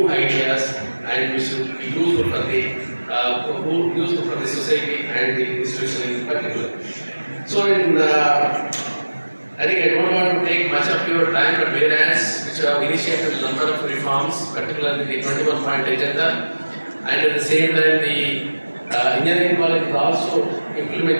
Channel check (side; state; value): both; inverted; correlation -1.00